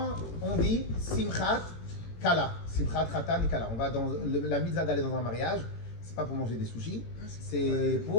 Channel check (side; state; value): right; late; 18 ms